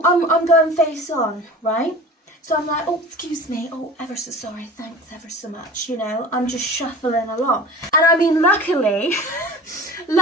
going face on, right? So I'm like, oh, excuse me, oh, ever so sorry, thanks ever so much, you know, I'm just shuffling along. And I mean, luckily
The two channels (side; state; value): both; normal; correlation 0.39